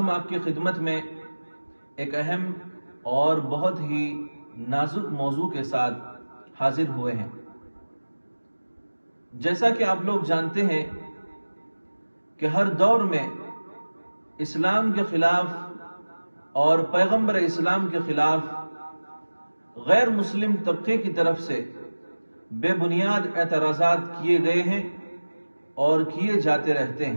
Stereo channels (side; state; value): both; inverted; correlation -1.00